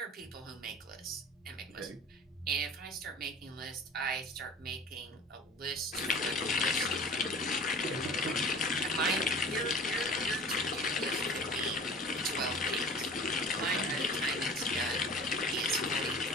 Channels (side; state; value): both; normal; correlation 0.42